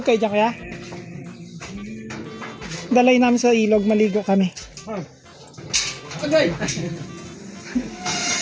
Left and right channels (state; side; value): identical; both; correlation 1.00